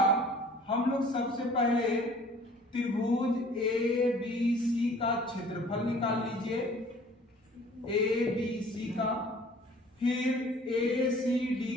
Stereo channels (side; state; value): both; normal; correlation 0.51